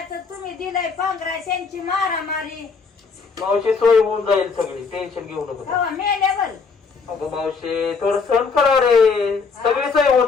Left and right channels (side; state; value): right; quieter; 5.0 dB